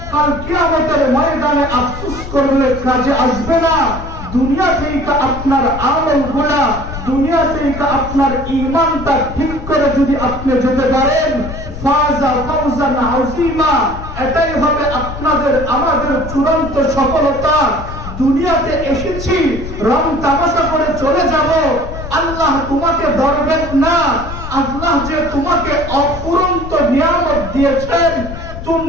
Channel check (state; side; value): noise; left; rumble, 10 dB below the sound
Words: কাল কিয়ামতের ময়দানে আফসোস করলে কাজে আসবে না। দুনিয়া থেকে আপনার আমলগুলা, দুনিয়া থেকে আপনার ঈমানটা ঠিক করে যদি আপনি যেতে পারেন, ফাজা ফাওজান আযীমা, এটাই হবে আপনাদের আমাদের চূড়ান্ত সফলতা। দুনিয়াতে এসেছি রং তামাশা করে চলে যাব, আল্লাহ তোমাকে ধরবেন না। আল্লাহ যে তোমাকে অফুরন্ত নিয়ামত দিয়েছেন,